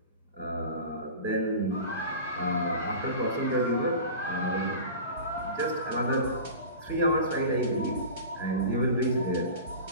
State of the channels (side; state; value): both; inverted; correlation -0.34